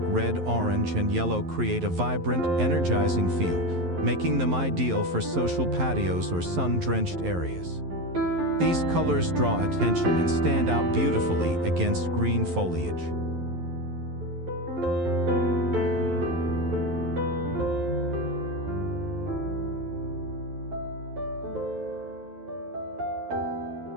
red, orange, and yellow create a vibrant, energizing feel, making them ideal for social patios or sun-drenched areas. These colors draw attention and stand out beautifully against green foliage.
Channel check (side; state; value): left; late; 11 ms